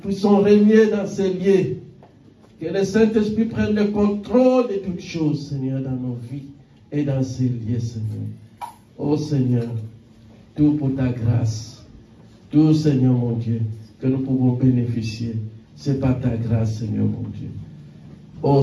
régner dans ces lieux. Que le Saint-Esprit prenne le contrôle de toutes choses, Seigneur, dans nos vies et dans ces lieux, Seigneur. Oh Seigneur, tout pour ta grâce. Tout, Seigneur mon Dieu, que nous pouvons bénéficier. C'est par ta grâce, Seigneur mon Dieu. Oh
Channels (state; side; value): identical; both; correlation 1.00